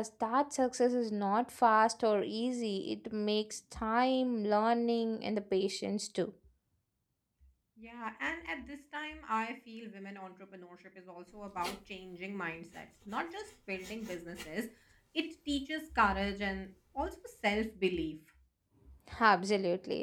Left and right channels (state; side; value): identical; both; correlation 1.00